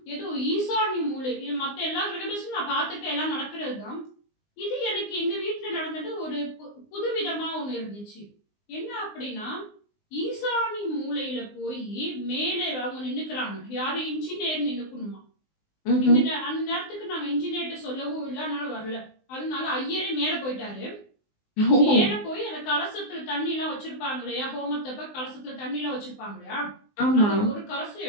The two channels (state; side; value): late; right; 19 ms